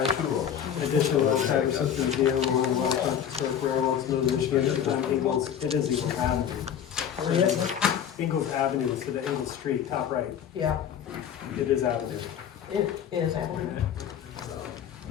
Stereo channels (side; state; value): right; quieter; 8.9 dB